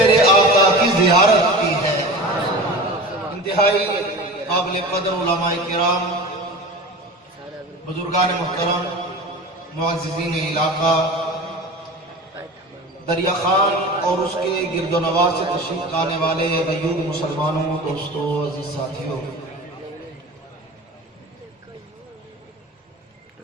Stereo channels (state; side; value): normal; both; correlation 0.34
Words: آقا کی زیارت کی ہے۔ انتہائی قابل قدر علماء کرام، بزرگان محترم، معززین علاقہ، دریا خان اور اس کے گرد و نواح سے تشریف لانے والے غیور مسلمانوں، دوستوں، عزیز ساتھیوں،